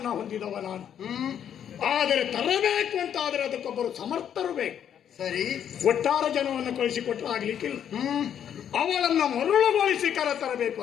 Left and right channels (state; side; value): quieter; right; 9.2 dB